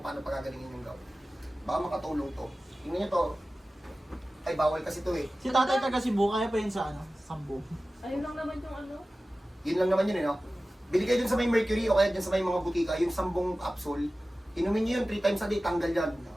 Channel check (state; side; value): normal; both; correlation 0.96